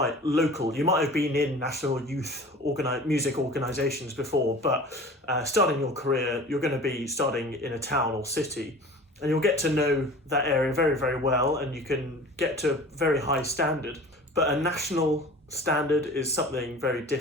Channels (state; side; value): normal; both; correlation 0.41